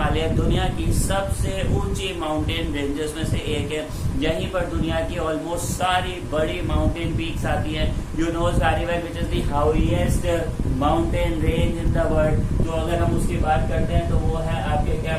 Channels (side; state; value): both; identical; correlation 1.00